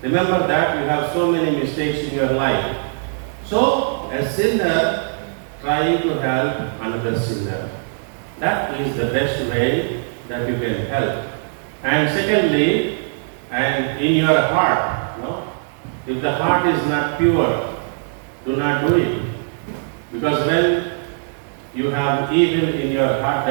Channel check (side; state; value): left; silent; digital silence